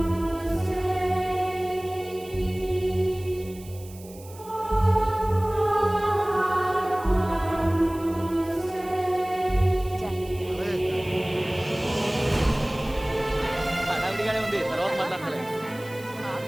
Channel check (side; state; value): right; noise; hiss, 21 dB below the sound